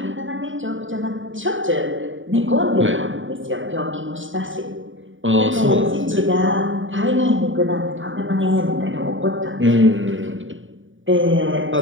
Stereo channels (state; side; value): late; left; 0.57 ms